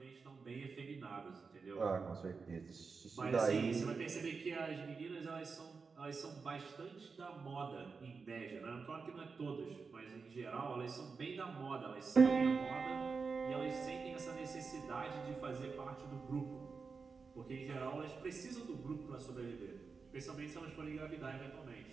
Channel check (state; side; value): quieter; left; 4.9 dB